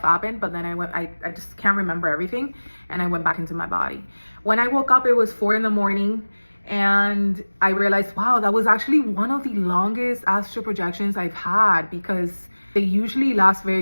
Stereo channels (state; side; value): inverted; both; correlation -1.00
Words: happened, but then I just can't remember everything. And I went back into my body. When I woke up, it was 4 a.m. And I realized, wow, that was actually one of the longest astral projections I've had, because they usually last